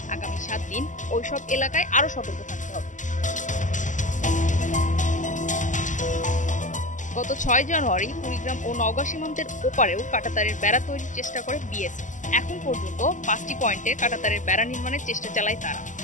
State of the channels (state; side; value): late; right; 0.37 ms